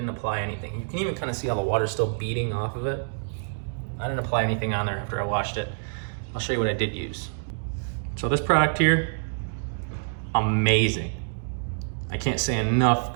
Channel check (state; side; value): silent; left; digital silence